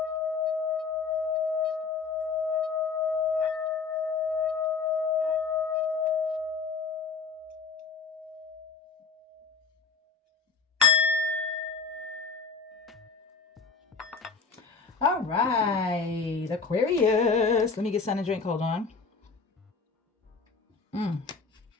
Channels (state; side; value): quieter; right; 5.0 dB